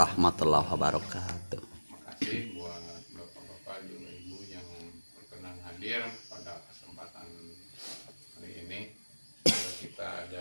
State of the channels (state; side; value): inverted; both; correlation -1.00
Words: wabarakatuh. Makasih buat bapak-bapak juga ibu yang berkenan hadir pada kesempatan hari ini. Semoga kita ada